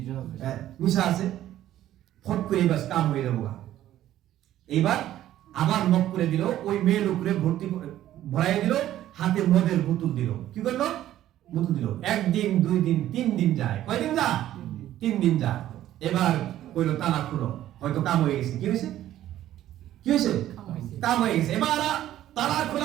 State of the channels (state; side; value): quieter; left; 12.9 dB